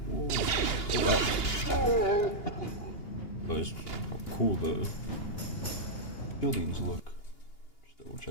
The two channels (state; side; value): late; right; 2.8 ms